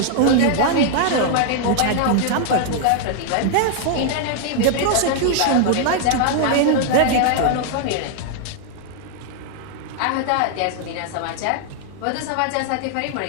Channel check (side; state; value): both; different; correlation 0.00